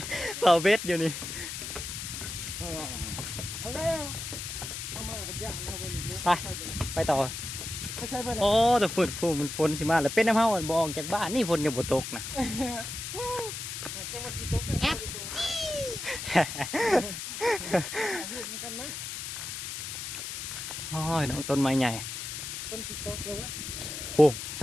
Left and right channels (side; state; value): left; noise; hiss, 6 dB below the sound